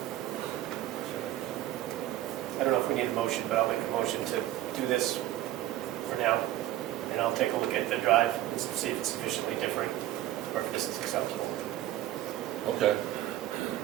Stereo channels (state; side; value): quieter; left; 14.1 dB